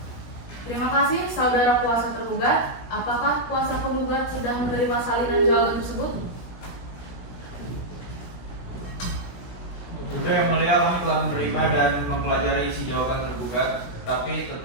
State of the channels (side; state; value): right; late; 17 ms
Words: Terima kasih saudara kuasa tergugat. Apakah kuasa penggugat sudah menerima salinan jawaban tersebut? Sudah, Yang Mulia, kami telah menerima dan mempelajari isi jawaban tergugat, tapi